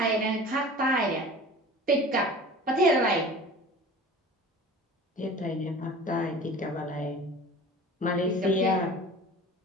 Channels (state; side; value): normal; both; correlation 0.40